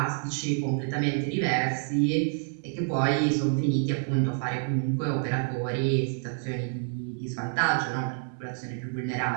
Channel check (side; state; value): left; silent; 59 dB below the other